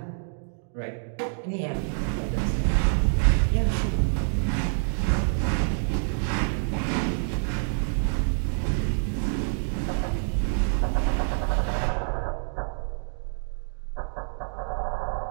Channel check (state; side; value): silent; left; digital silence